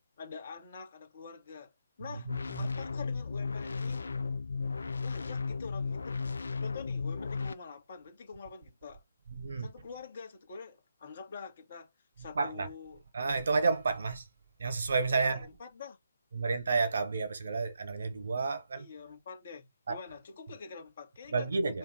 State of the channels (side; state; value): both; inverted; correlation -0.83